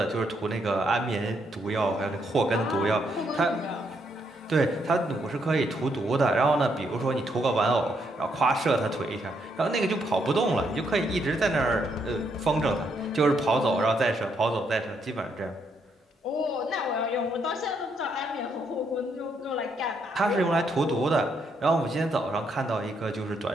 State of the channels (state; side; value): normal; both; correlation 0.75